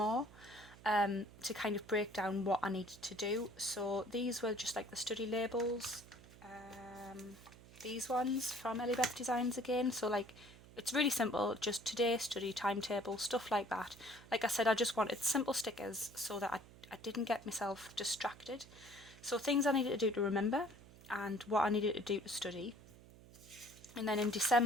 to kind of break down what I needed to do. So these were just like the study labels, these ones from Ellie Beth Designs again. So like, it's really simple, just today, study, timetable, stuff like that. Like I said, I just wanted simple stickers so that I didn't get myself distracted. So things I needed to do to remember and what I needed to do to study. And then in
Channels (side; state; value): right; noise; hum, 20 dB below the sound